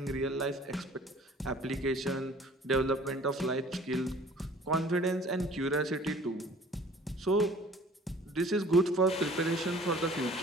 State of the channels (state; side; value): normal; both; correlation 0.51